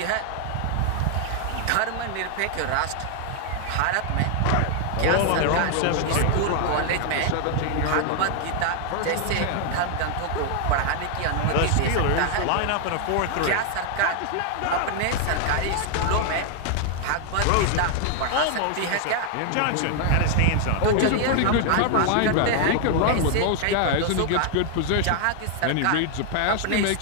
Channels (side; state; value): both; different; correlation 0.00